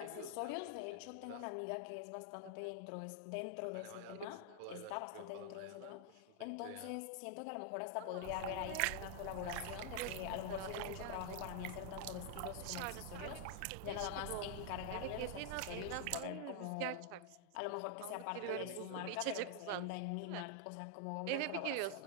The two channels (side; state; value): both; different; correlation 0.00